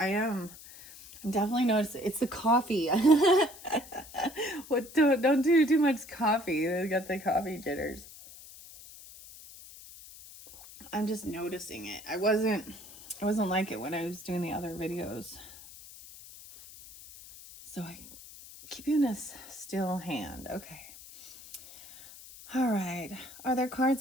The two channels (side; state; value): left; noise; hiss, 18 dB below the sound